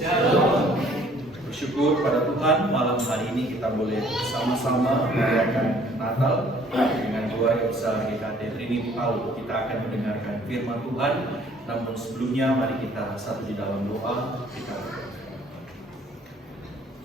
Bersyukur pada Tuhan malam hari ini kita boleh bersama-sama merayakan Natal dengan doa yang besar GKT Trinity Palu. Kita akan mendengarkan firman Tuhan. Namun sebelumnya mari kita satu di dalam doa. Kita berdoa.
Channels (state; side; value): normal; both; correlation 0.58